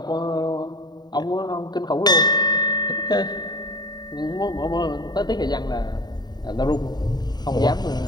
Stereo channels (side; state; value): right; late; 0.20 ms